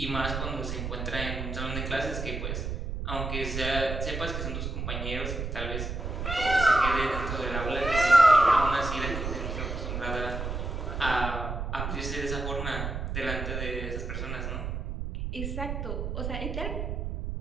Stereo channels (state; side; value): noise; right; rumble, 4 dB below the sound